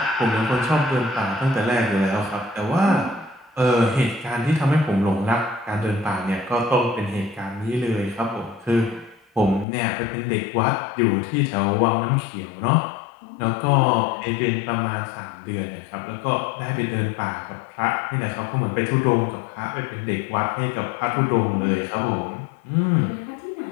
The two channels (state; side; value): drops out; right; at 9.7 s